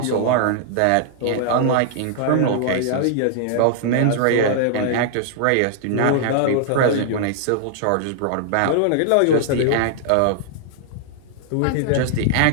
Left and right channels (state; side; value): different; both; correlation -0.01